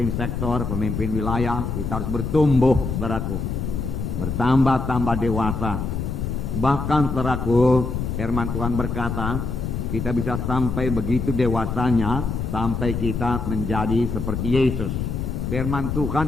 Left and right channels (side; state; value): left; noise; rumble, 3 dB below the sound